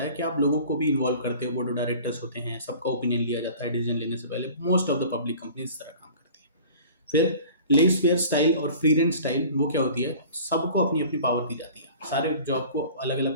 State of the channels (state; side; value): inverted; both; correlation -0.44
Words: है कि आप लोगों को भी इन्वॉल्व करते हो, बोर्ड ऑफ डायरेक्टर्स होते हैं, सबका ओपिनियन लिया जाता है डिसीजन लेने से पहले। Most of the public company इस तरह काम करती है। फिर लेस फेयर स्टाइल और फ्री रेंज स्टाइल, वो क्या होती है, सबको अपनी अपनी पावर दी जाती है, सारे जॉब को अलग